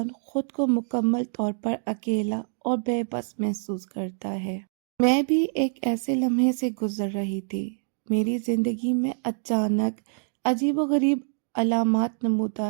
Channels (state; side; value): silent; left; digital silence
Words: خود کو مکمل طور پر اکیلا اور بے بس محسوس کرتا ہے۔ میں بھی ایک ایسے لمحے سے گزر رہی تھی۔ میری زندگی میں اچانک عجیب و غریب علامات